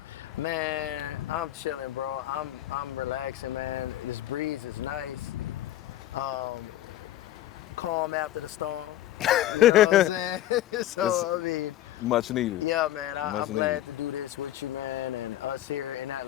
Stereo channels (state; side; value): quieter; right; 13.4 dB